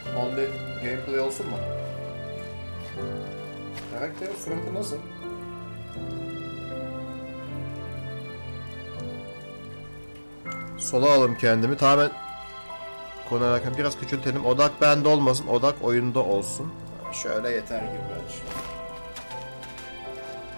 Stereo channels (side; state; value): both; inverted; correlation -1.00